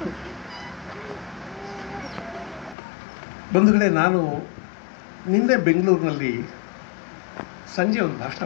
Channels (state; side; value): drops out; right; at 2.8 s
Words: ಬಂಧುಗಳೇ, ನಾನು ನಿನ್ನೆ ಬೆಂಗಳೂರಿನಲ್ಲಿ ಸಂಜೆ ಒಂದು ಭಾಷಣ